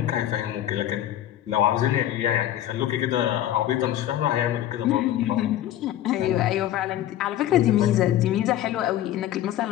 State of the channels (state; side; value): quieter; right; 12.4 dB